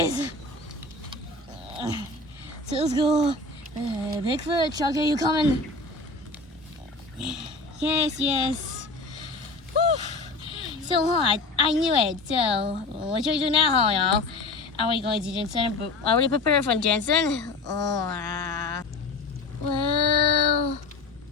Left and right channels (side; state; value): right; quieter; 3.3 dB